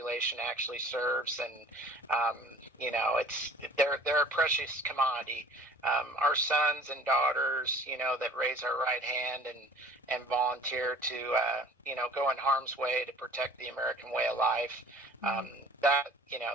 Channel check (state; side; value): normal; both; correlation 0.47